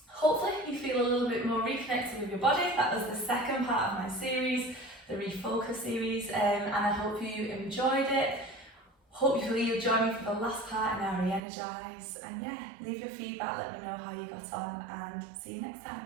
hopefully you feel a little bit more reconnected with your body. That was the second part of my series, the Refocus series, and I hope you enjoyed it. Hopefully you'll join me for the last part in our re-energize, and yeah, leave your feedback, let me know how you got on, and see you next time.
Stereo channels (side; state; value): left; drops out; at 11.4 s